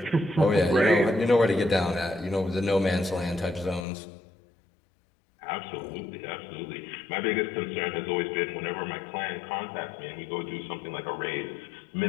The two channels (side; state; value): right; drops out; at 3.9 s